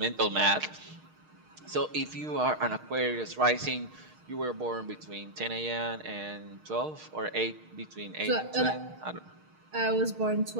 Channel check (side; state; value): left; late; 6.5 ms